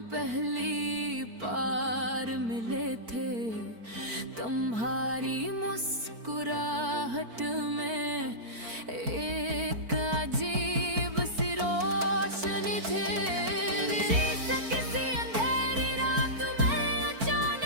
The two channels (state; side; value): late; left; 4.5 ms